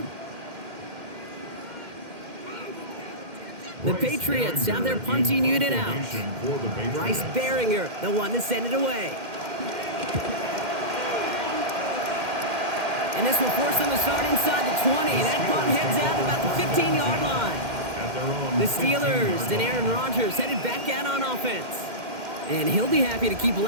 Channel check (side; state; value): left; late; 2.1 ms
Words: The Patriots have their punting unit out. Bryce Behringer, the one to send it away. And this will force them to start inside the 20. That punt heads out about the 15-yard line. their own The Steelers 15-yard and line. Aaron Rodgers headed back out on offense. And he'll be happy to keep